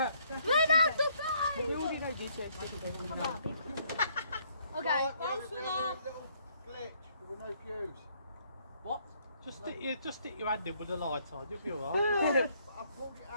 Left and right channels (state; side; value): inverted; both; correlation -0.67